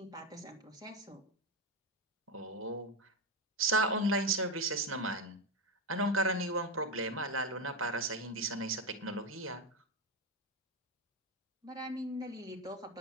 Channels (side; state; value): both; normal; correlation 0.10